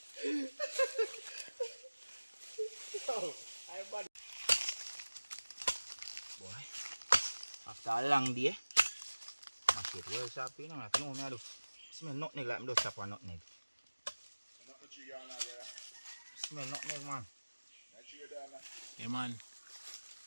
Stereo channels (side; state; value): both; inverted; correlation -1.00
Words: Boy, after a long day, my shit well sharp, you know, I know me I do smell nutmeg like me do chop on nutmeg. Smell nutmeg, man. Yeah, man.